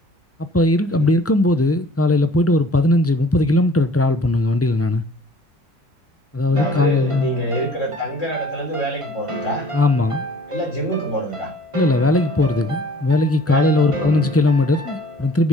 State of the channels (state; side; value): normal; both; correlation 0.53